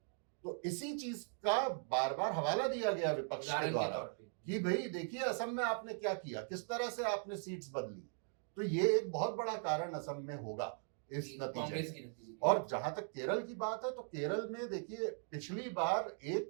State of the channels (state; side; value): silent; left; 51 dB below the other